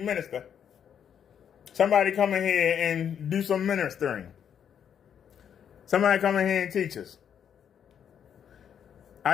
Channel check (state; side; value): quieter; right; 8.4 dB